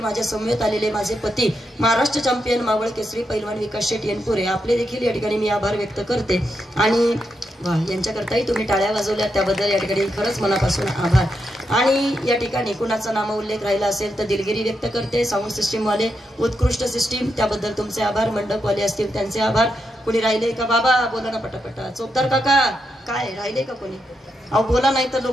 माझ्या समवेत आलेले माझे पती महाराष्ट्र चॅम्पियन मावळ केसरी पैलवान विकास शेट येनपुरे आपले देखील या ठिकाणी मी आभार व्यक्त करते. आणि यांच्याकरताही तुम्ही टाळ्या वाजवल्या त्याबद्दल या ठिकाणी खरंच मनापासून आभार. आणि या ठिकाणी कुणाचा नामोल्लेख राहिला असेल तर दिलगिरी व्यक्त करते. साऊंड सिस्टीम वाले उत्कृष्ट सिस्टीम त्याबद्दल तुमचे आभार. मंडपवाले असतील त्यांचे आभार. कुणी राहिले का बाबा बोला ना पटापटा. चोपदार काका काय राहिले का कोणी? अहो बोला, नाही तर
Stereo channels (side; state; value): both; normal; correlation 0.83